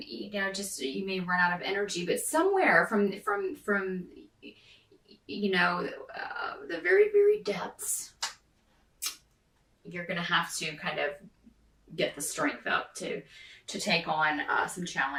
know, just you may run out of energy, but somewhere from you know, the very, very depths, you're going to have to kind of get the strength up to take on some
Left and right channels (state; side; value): identical; both; correlation 1.00